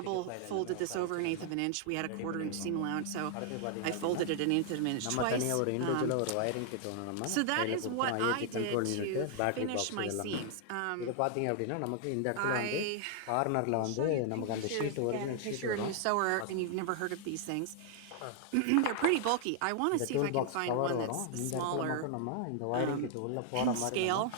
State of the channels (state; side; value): different; both; correlation 0.00